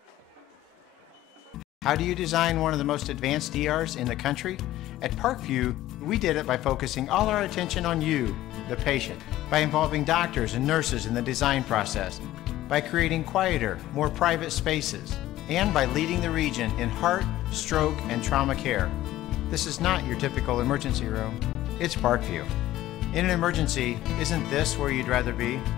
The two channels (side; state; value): right; quieter; 14.8 dB